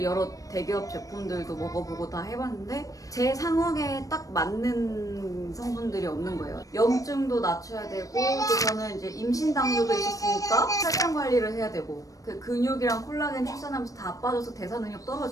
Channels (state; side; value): late; right; 0.16 ms